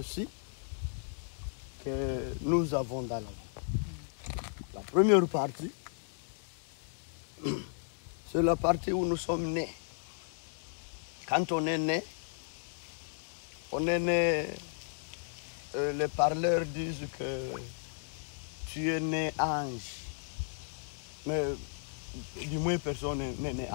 que nous avons dans la vie. La première partie, c'est la partie où nous sommes nés. Quand on est né, les parleurs disent que tu es né ange. Mais du moins personne n'est né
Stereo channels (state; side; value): silent; right; digital silence